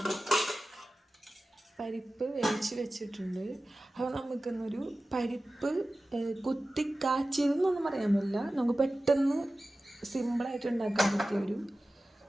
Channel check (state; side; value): normal; both; correlation 0.96